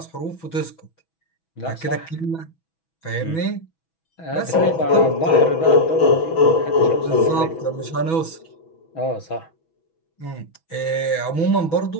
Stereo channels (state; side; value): late; right; 6.1 ms